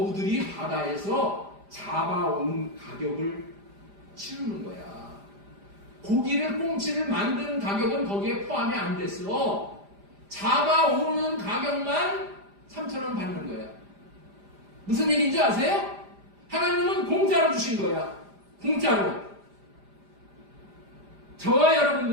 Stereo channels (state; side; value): late; left; 5.0 ms